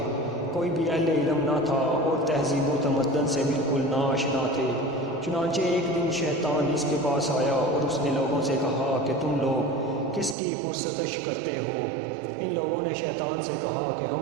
کوئی بھی اہل علم نہ تھا، اور تہذیب و تمدن سے بالکل ناآشنا تھے۔ چنانچہ ایک دن شیطان اس کے پاس آیا اور اس نے لوگوں سے کہا کہ تم لوگ کس کی پرستش کرتے ہو؟ ان لوگوں نے شیطان سے کہا کہ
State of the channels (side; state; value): left; drops out; at 10.4 s